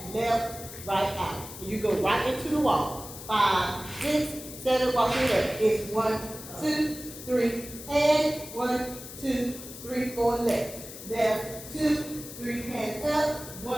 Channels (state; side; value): noise; left; hiss, 13 dB below the sound